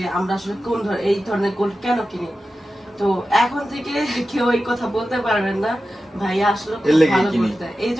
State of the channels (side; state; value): both; normal; correlation 0.93